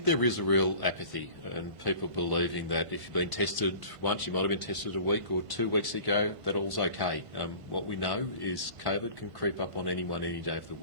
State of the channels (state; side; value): late; left; 1.5 ms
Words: there is a real apathy and people believing that if you've been tested once, you might have been tested a week or 2 weeks ago, that all's okay. What we know is COVID can creep up on anyone any day of the